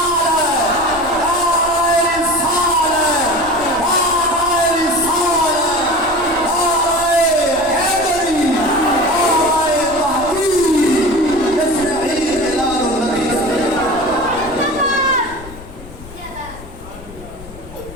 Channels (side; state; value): left; noise; rumble, 17 dB below the sound